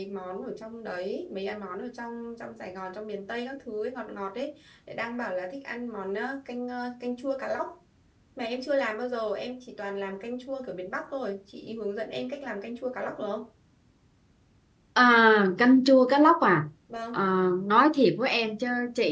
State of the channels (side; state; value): both; identical; correlation 1.00